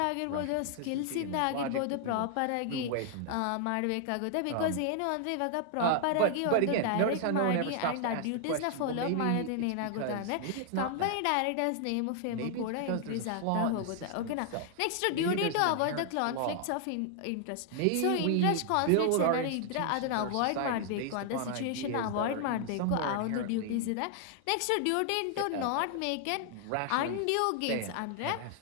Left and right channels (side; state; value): both; different; correlation 0.00